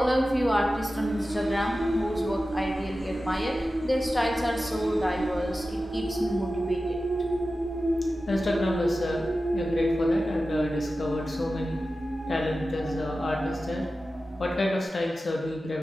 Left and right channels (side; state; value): both; normal; correlation 0.94